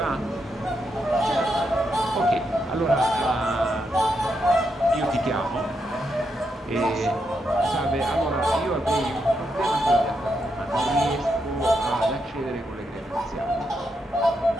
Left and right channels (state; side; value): normal; both; correlation 0.82